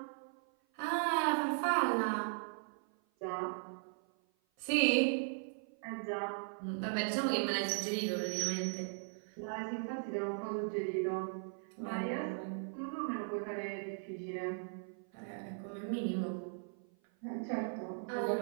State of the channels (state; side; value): silent; left; 52 dB below the other